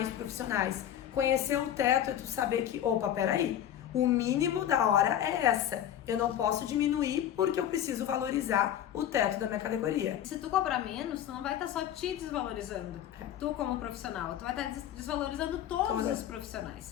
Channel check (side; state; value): right; quieter; 10.8 dB